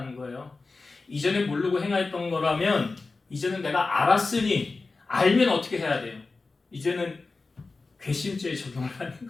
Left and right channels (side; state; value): right; quieter; 3.8 dB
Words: 거예요. 이전에 모르고 행하였던 거라면 이제는 내가 알았으니 알면 어떻게 해야 돼요? 이제는 괘씸죄에 적용을 하는